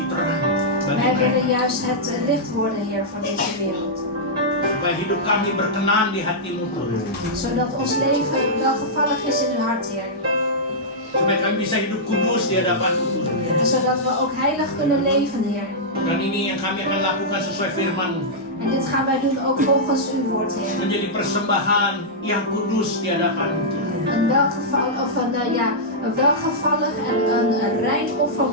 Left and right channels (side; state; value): both; normal; correlation -0.10